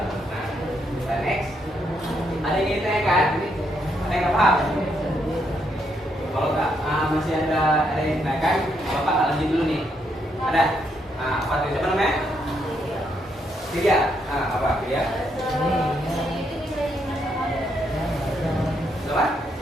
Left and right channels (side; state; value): both; normal; correlation 0.76